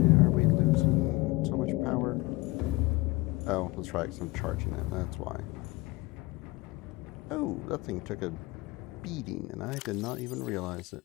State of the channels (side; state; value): right; quieter; 21.7 dB